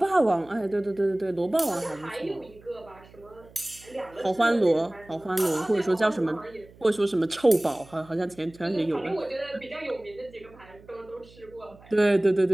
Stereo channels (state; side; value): noise; right; hum, 24 dB below the sound